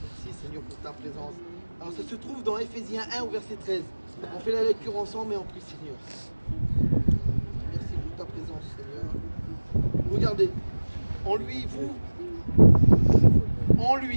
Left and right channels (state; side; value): inverted; both; correlation -1.00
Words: Merci Seigneur pour ta présence. Alors ça se trouve dans Éphésiens 1 au verset 13. On fait la lecture ensemble et on prie Seigneur. Merci pour ta présence Seigneur. Regardez, en lui,